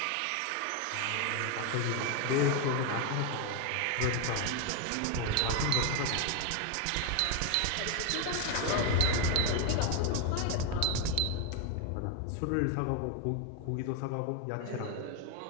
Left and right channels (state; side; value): different; both; correlation 0.01